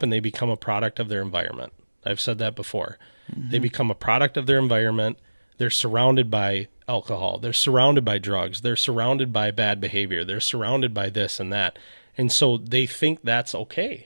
and they become a product of their environment. I've said that before. They become a product of their environment. They're surrounded by alcohol. They're surrounded by drugs. They're surrounded by bad behavior. They're surrounded by this and that. And so they think that's okay.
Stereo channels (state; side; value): inverted; both; correlation -1.00